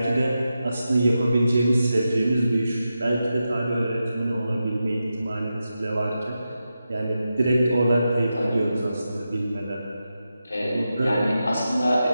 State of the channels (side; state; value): both; inverted; correlation -0.90